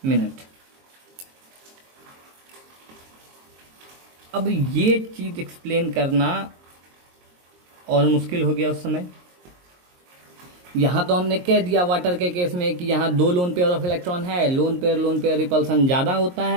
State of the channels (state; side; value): late; left; 22 ms